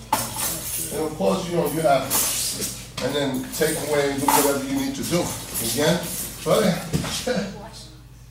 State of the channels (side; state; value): both; identical; correlation 1.00